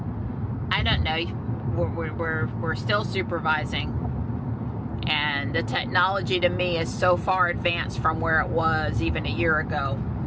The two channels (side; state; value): both; identical; correlation 1.00